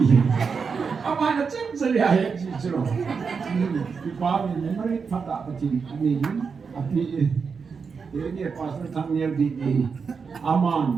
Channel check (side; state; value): left; quieter; 5.5 dB